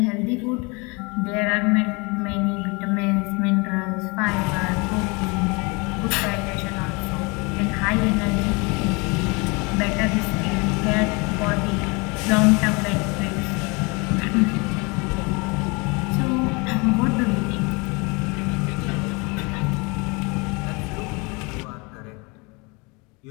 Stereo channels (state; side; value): quieter; right; 28.6 dB